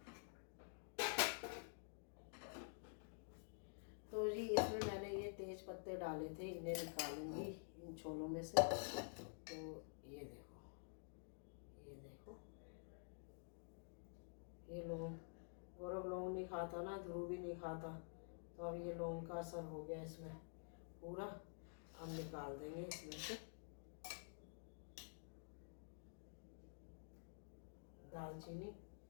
तो जी इसमें मैंने ये तेज पत्ते डाले थे, इन्हें निकालूंगी इन छोलों में से। तो ये देखो, ये देखो, ये लौंग गौरव लौंग नहीं खाता ना, ध्रुव भी नहीं खाता, तो अब ये लौंग का असर हो गया इसमें पूरा। अब निकाल देंगे इसमें से। दालचीनी,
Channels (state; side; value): silent; right; digital silence